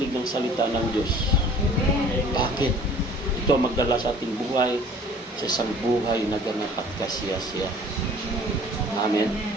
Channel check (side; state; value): both; normal; correlation 0.50